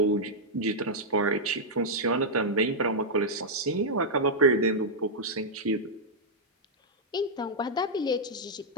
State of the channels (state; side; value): normal; both; correlation -0.05